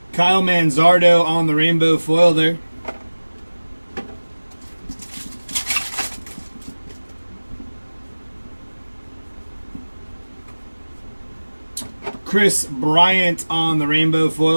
Kyle Manzardo on the rainbow foil there. Chris Bryant on the rainbow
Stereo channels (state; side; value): inverted; both; correlation -1.00